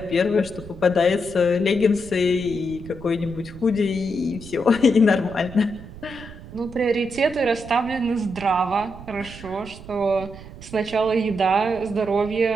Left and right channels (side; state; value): right; noise; rumble, 15 dB below the sound